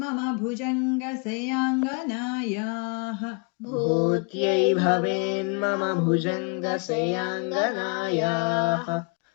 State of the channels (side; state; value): right; quieter; 37.8 dB